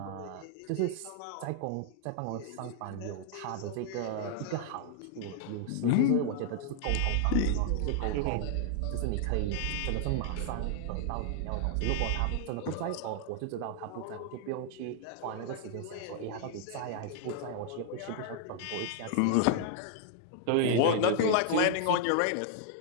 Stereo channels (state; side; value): different; both; correlation 0.00